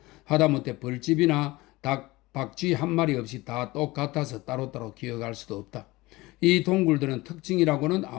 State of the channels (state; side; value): quieter; right; 20.6 dB